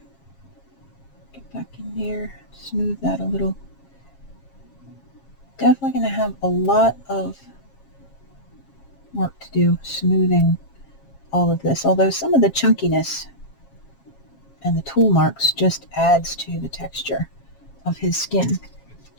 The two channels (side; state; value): right; late; 7.3 ms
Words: Get back in there, smooth that a little. Definitely going to have a lot of work to do smoothing all of this, although some of the chunkiness and the tool marks just adds to the texture of his skin,